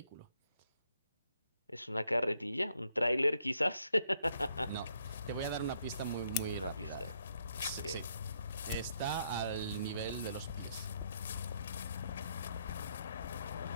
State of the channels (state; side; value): inverted; both; correlation -0.72